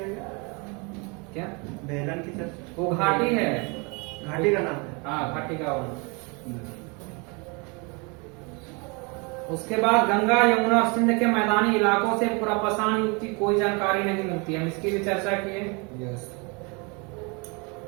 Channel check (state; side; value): quieter; left; 30.7 dB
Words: गया? क्या बेलन की चर्चा? वो घाटी है, घाटी का नाम है। हाँ घाटी का वो। उसके बाद गंगा, यमुना और सिंध के मैदानी इलाकों से पूरा पाषाण युग की कोई जानकारी नहीं मिलती। हम इसकी भी चर्चा किए।